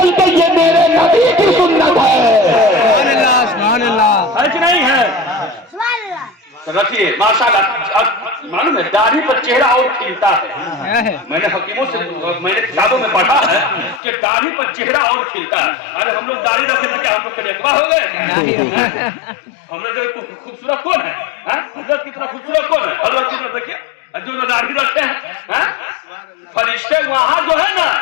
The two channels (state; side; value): drops out; right; at 14.0 s